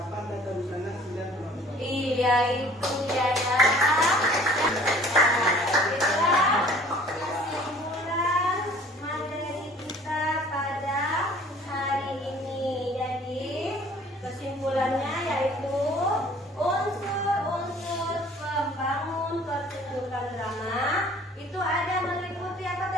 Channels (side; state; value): both; normal; correlation 0.52